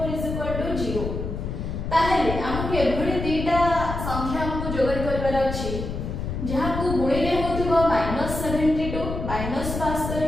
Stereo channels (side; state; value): left; noise; rumble, 5 dB below the sound